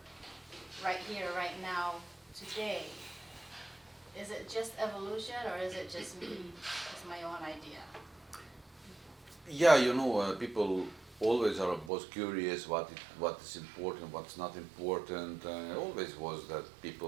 right here, right now, today. Is it just evolution, or is it just me, it's my own idea? Yeah, people always are both curious what is important, what's not important. Always was that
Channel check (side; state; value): left; drops out; at 11.9 s